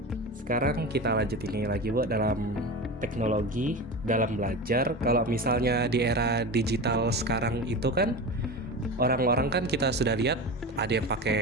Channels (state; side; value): normal; both; correlation 0.27